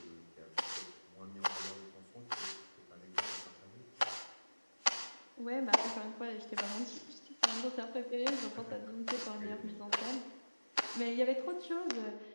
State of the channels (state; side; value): inverted; both; correlation -1.00